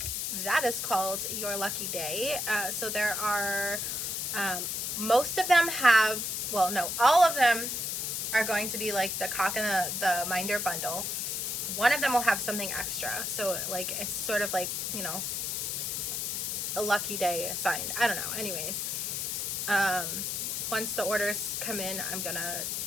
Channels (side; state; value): left; noise; hiss, 1 dB below the sound